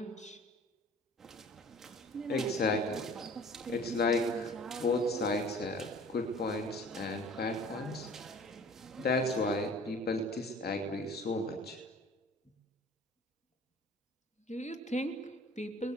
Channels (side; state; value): both; normal; correlation 0.47